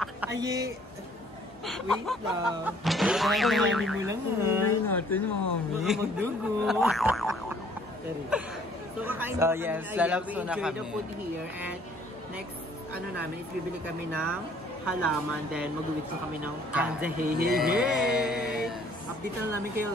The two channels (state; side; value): normal; both; correlation 0.59